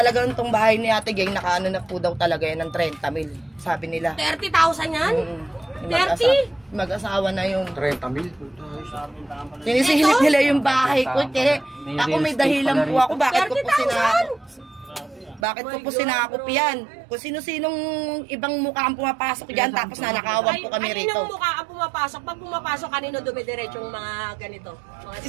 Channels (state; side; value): drops out; left; at 15.5 s